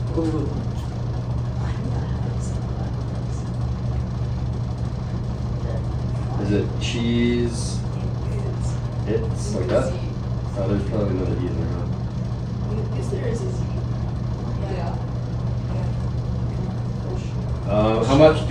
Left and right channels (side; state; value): both; identical; correlation 1.00